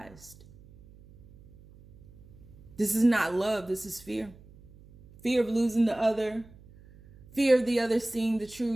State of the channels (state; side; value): noise; right; hum, 23 dB below the sound